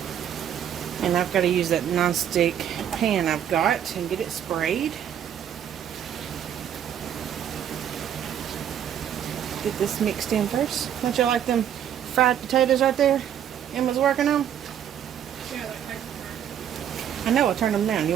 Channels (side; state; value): left; quieter; 9.6 dB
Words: And I've got to use that non-stick pan I've got and get it sprayed. Get this mixed in first. Don't you like them fried potatoes right there Emma's working on? I know, I turned them down.